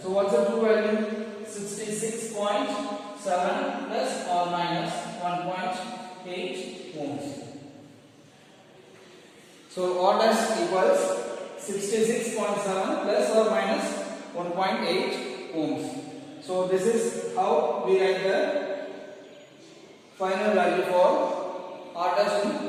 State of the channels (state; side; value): identical; both; correlation 1.00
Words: So what's the true value? 66.7 plus or minus 1.8 ohms. So r dash equals 66.7 plus or minus 1.8 ohms. So this is how we write the final value for r dash in